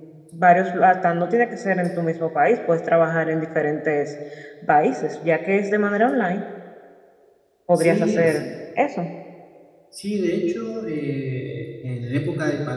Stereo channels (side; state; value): both; identical; correlation 1.00